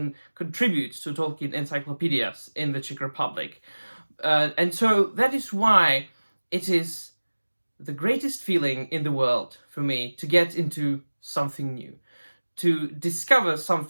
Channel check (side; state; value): both; inverted; correlation -1.00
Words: contributes to Tolkien encyclopedias in the Czech Republic. And so that is why it is the greatest feeling in the world for me to get into something new, to discover